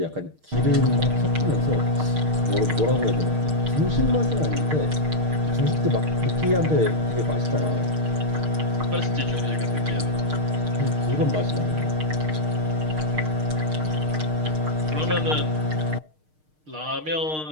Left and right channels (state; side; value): late; left; 6.5 ms